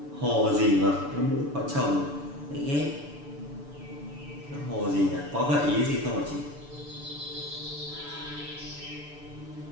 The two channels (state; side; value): late; left; 6.9 ms